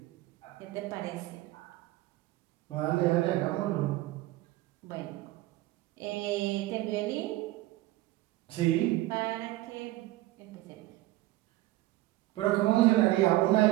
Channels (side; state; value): left; quieter; 17.2 dB